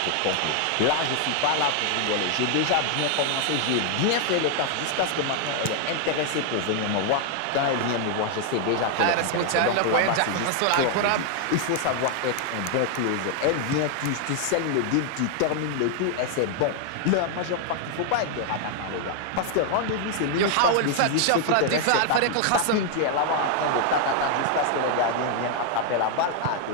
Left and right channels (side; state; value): both; different; correlation 0.00